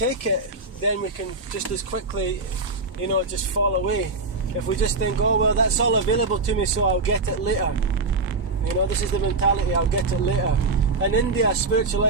it, then we can just as quickly, just fall away. If we just think, oh, well, that's all available to me, so I'll get it later. This is the mentality, I'll get it later. In India, spiritual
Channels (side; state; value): left; quieter; 3.6 dB